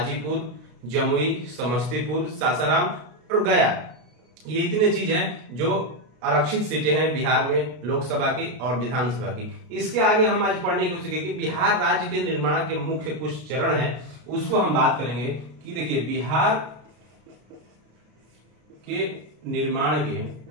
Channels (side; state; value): left; late; 33 ms